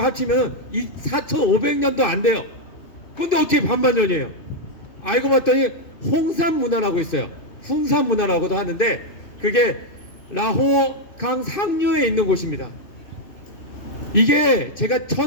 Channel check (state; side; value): late; right; 2.6 ms